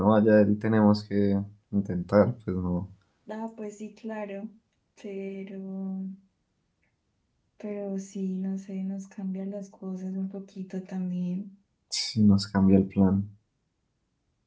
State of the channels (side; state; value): both; identical; correlation 1.00